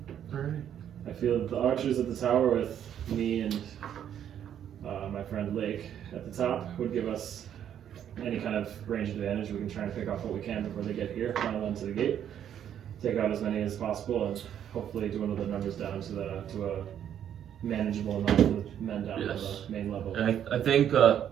Alright. I feel that the archers at the tower with me and my friend Lake at the top would give us any kind of range advantage. We can try and pick off what we can before they get here, funnel them to the gate, take out as many as possible, and hopefully dwindle the numbers down to a manageable amount of the men down Yes. to the main level. And I think,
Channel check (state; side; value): quieter; left; 9.7 dB